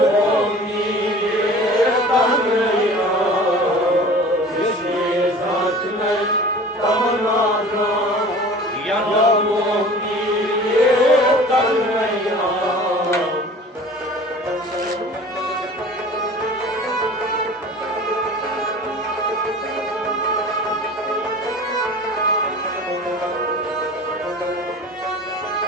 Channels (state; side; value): normal; both; correlation 0.42